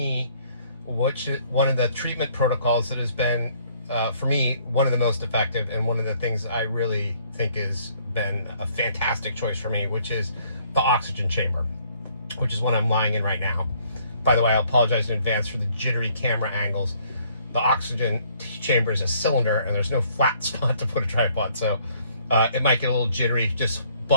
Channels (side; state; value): both; inverted; correlation -0.63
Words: one of the treatment protocols that has been, for me, one of the most effective, and one of the things I really think has been a fantastic choice for me, which is the oxygen chamber, which is what I'm lying in right now. By the way, I apologize in advance for the jittery camera angles. The oxygen chamber is a cylinder, and there's no flat spot to put a tripod, so it might get a little jittery. Just